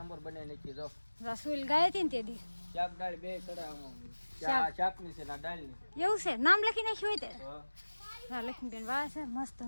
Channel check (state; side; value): inverted; both; correlation -1.00